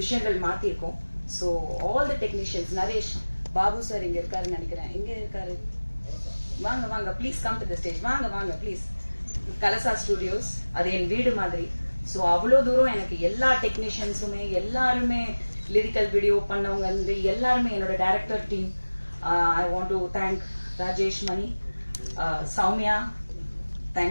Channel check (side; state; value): both; inverted; correlation -1.00